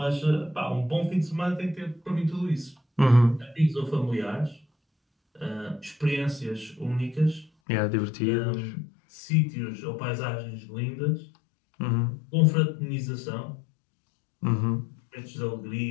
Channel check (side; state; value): right; drops out; at 7.5 s